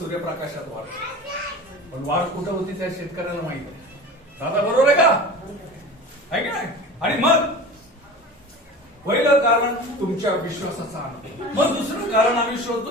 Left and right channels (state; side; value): normal; both; correlation 0.35